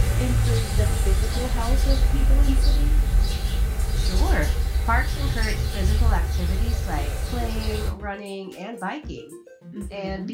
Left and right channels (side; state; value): both; identical; correlation 1.00